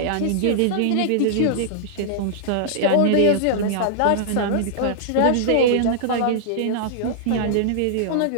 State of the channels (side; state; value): both; different; correlation -0.01